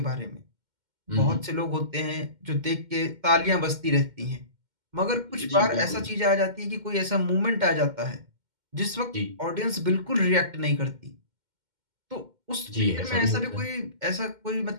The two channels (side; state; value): left; late; 2.1 ms